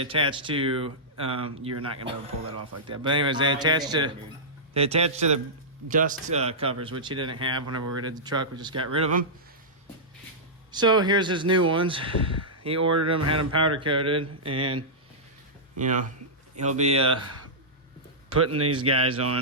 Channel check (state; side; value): normal; both; correlation -0.13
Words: attach to. You're not gonna be able to pull that off like that. But anyways, they attach to the dust covers, which he didn't have whenever we did the truck. We just got rid of them. So here's his new ones. He ordered them, had them powder coated, and you know he'll be putting these guys